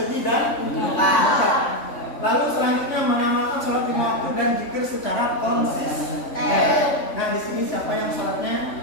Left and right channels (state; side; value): late; right; 3.5 ms